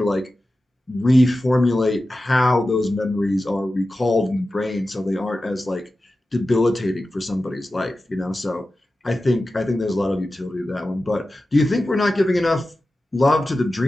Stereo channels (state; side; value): normal; both; correlation 0.94